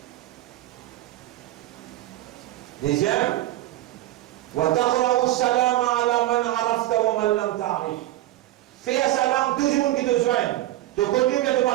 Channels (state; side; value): quieter; left; 15.4 dB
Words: Deuxième, وَتَقْرَأُ السَّلَامَ عَلَى مَنْ عَرَفْتَ وَمَنْ لَمْ تَعْرِفْ. Fais un salam, tout le monde qui te joigne. Te connu, mais te pas